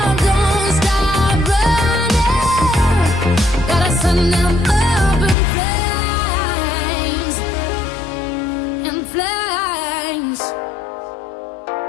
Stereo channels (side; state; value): right; drops out; at 5.4 s